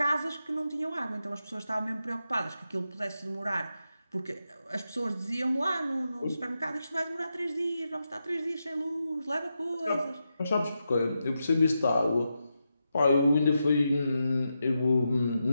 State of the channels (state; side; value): inverted; both; correlation -0.87